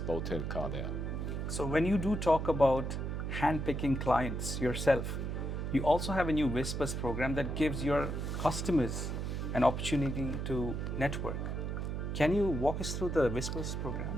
Bowtail car there. So when you do talk about handpicking clients yourself, you also have a new Whispers program that gives your customers an opportunity to network. Can you walk us through the Whispers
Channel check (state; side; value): noise; right; hum, 3 dB below the sound